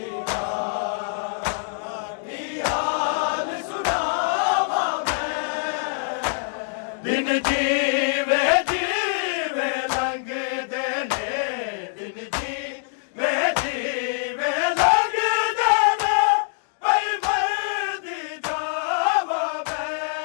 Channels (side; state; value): right; silent; digital silence